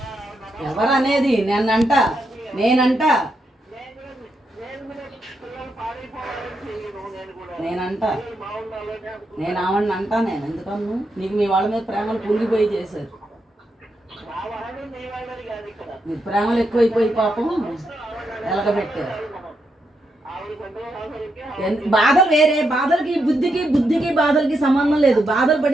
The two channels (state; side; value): normal; both; correlation 0.82